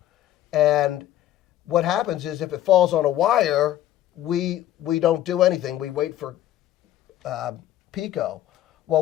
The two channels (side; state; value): right; quieter; 12.9 dB